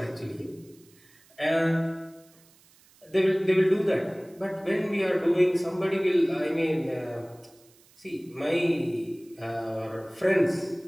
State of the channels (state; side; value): noise; right; hiss, 29 dB below the sound